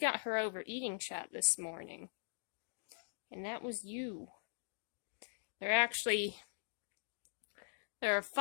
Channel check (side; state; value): right; silent; digital silence